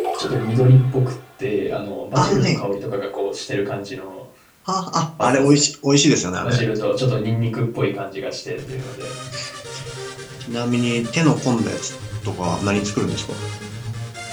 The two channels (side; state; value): both; identical; correlation 1.00